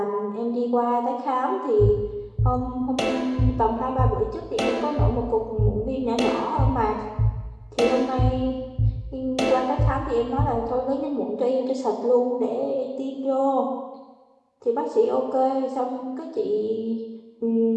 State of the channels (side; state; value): both; identical; correlation 1.00